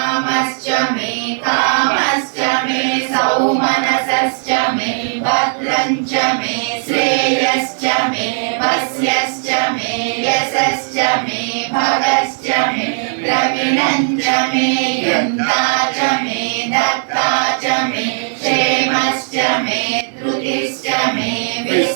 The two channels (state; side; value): silent; left; digital silence